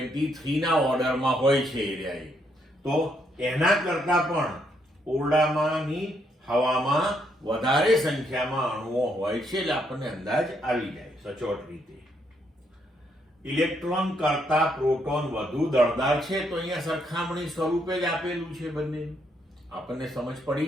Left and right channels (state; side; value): normal; both; correlation 0.74